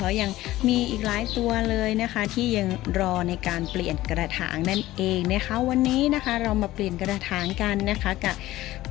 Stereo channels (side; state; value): right; quieter; 16.2 dB